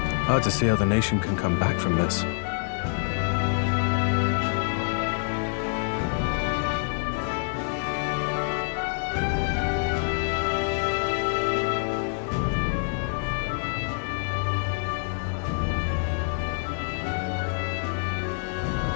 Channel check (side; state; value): right; silent; digital silence